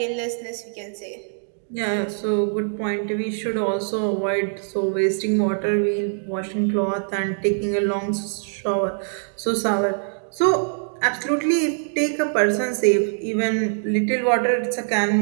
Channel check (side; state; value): left; silent; digital silence